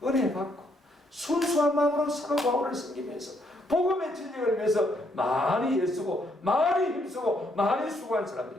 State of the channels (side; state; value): both; normal; correlation 0.72